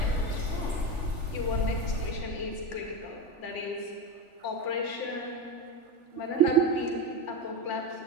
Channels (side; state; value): left; late; 3.4 ms